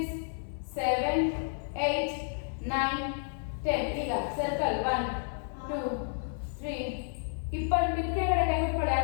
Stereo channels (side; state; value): right; silent; 57 dB below the other